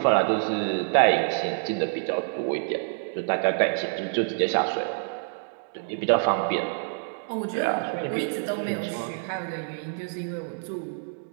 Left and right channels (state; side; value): silent; left; digital silence